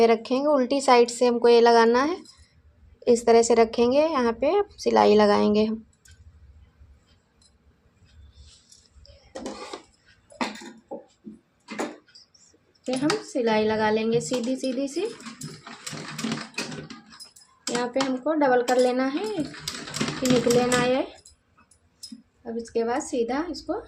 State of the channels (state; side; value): identical; both; correlation 1.00